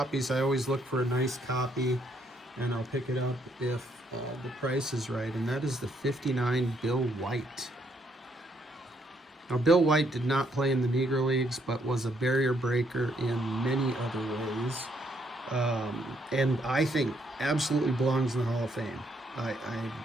I always look for a nice copy, and I'll pick it up if the price is right, and that is the 59 Bill White. Now, Bill White did not play in the Negro Leagues, but was a barrier breaker in many other ways, and I think absolutely belongs in the Hall of Fame.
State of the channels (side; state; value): both; normal; correlation 0.72